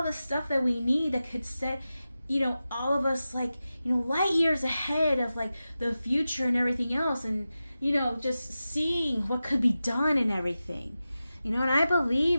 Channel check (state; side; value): inverted; both; correlation -0.93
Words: the stuff that we need that could set all of us like light years ahead of like the future and everything else, and just seeing what could be done and everything. And I